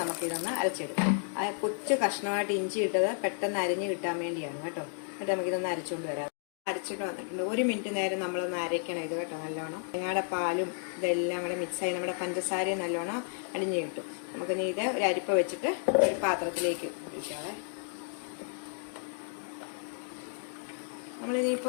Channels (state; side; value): silent; right; 56 dB below the other